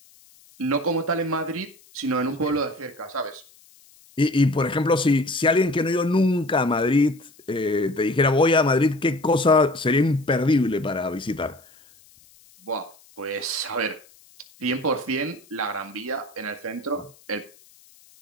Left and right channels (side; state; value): left; noise; hiss, 28 dB below the sound